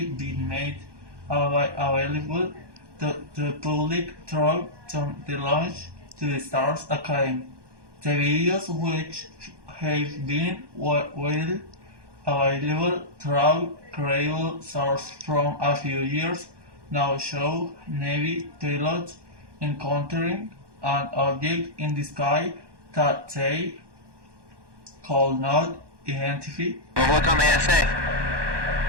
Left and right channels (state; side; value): late; left; 1.2 ms